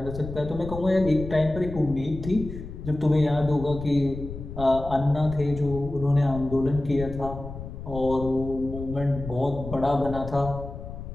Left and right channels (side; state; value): left; noise; rumble, 10 dB below the sound